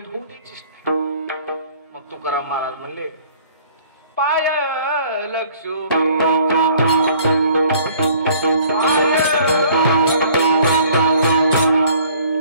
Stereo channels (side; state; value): both; inverted; correlation -0.55